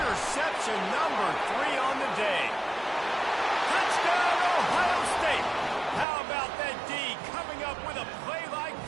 number 3 on the day. Touchdown, Ohio State. How about that D coming up with a play like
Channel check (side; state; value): left; drops out; at 6.1 s